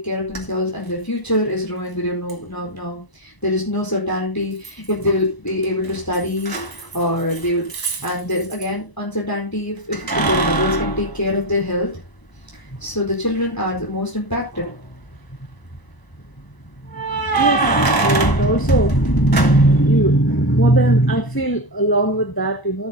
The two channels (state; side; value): late; right; 1.0 ms